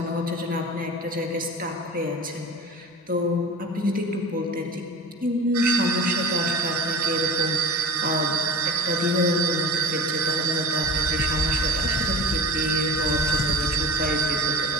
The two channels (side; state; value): both; normal; correlation 0.36